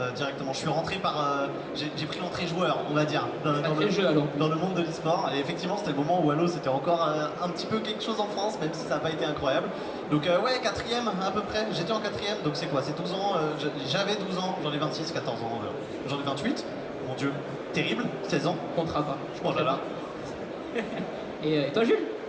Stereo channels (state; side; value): identical; both; correlation 1.00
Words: directement. Je suis rentré j'ai pris l'entrée joueur, on va dire, dans le monde de l'e-sport, et effectivement c'était le moment où Halo c'était encore un petit peu quelque chose en France, même si ça n'a pas été incroyable. Donc ouais, 4ème à peu près, j'étais en 4ème, donc c'est quoi, c'est 12 ans, j'avais 12 ans, j'en ai 26, 14 ans, j'en ai 28, mon dieu. Terrible, 16 ans. Comptera pas. Oh là là. Et toi Jules?